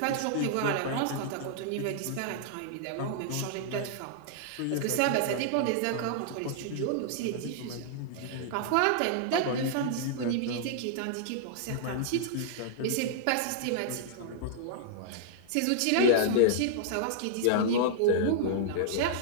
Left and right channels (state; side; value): different; both; correlation -0.01